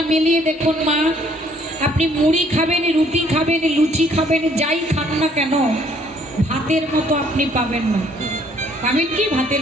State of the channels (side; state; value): both; normal; correlation 0.62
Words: মিলিয়ে দেখুন মা, আপনি মুড়ি খাবেন, রুটি খাবেন, লুচি খাবেন, যাই খান না কেন, ভাতের মতো আপনি পাবেন না। পাবেন কি ভাতের